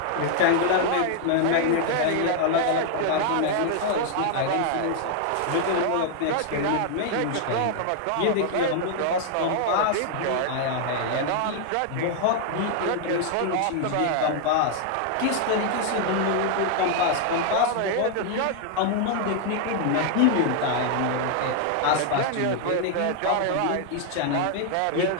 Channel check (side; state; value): both; different; correlation 0.00